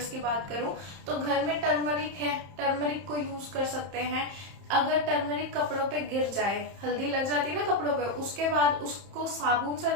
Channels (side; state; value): left; late; 31 ms